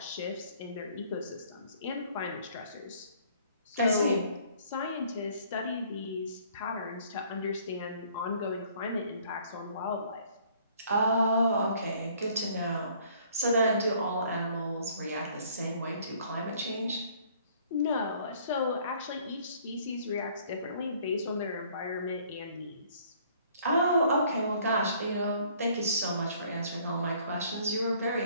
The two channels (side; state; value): both; inverted; correlation -0.58